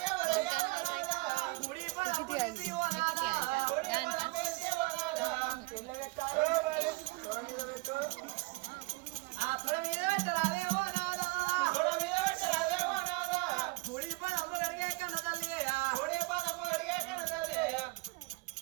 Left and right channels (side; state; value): left; quieter; 23.7 dB